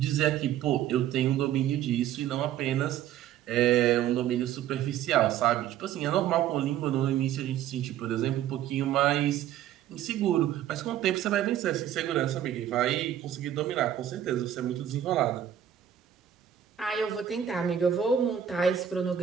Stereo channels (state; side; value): quieter; left; 10.5 dB